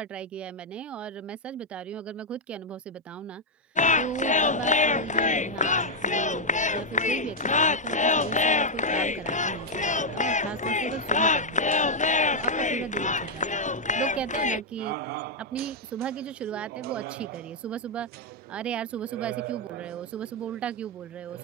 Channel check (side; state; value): both; normal; correlation -0.02